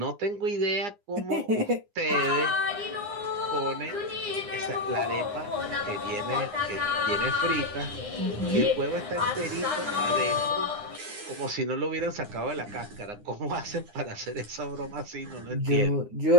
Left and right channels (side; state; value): left; late; 9.8 ms